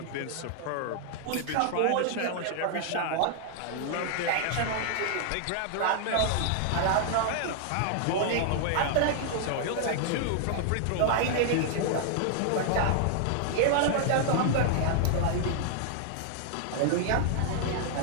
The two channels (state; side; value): different; both; correlation 0.00